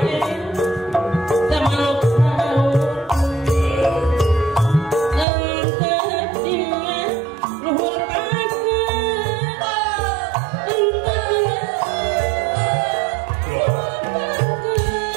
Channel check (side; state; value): left; drops out; at 5.2 s